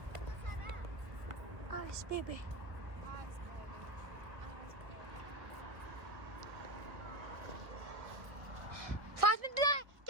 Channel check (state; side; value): late; left; 1.4 ms